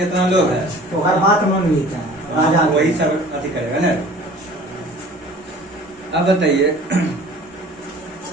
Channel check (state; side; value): normal; both; correlation 0.46